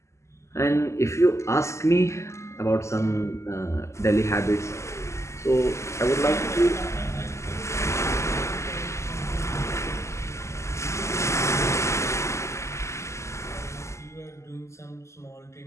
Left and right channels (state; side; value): late; right; 0.13 ms